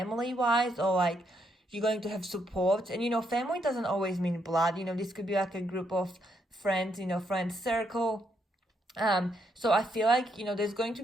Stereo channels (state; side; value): normal; both; correlation 0.76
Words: or like you're going to have support. And, you know, family doesn't always mean blood. You know, this could be like a group of friends, you know, friends circle. So I feel like, you know, there's going to